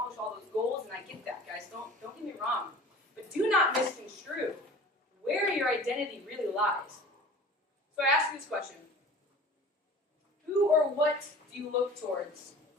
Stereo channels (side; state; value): both; normal; correlation 0.43